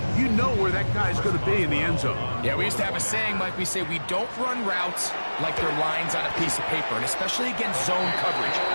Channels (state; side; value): inverted; both; correlation -1.00